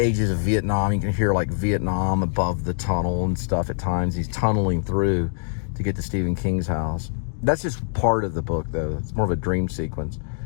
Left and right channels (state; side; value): silent; right; digital silence